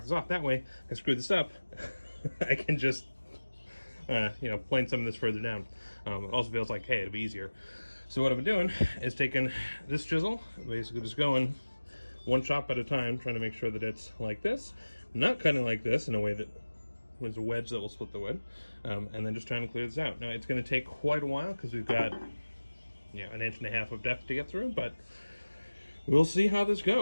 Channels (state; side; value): inverted; both; correlation -1.00